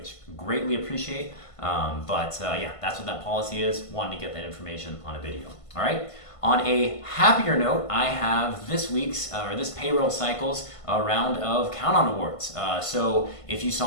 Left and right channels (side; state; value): right; late; 1.5 ms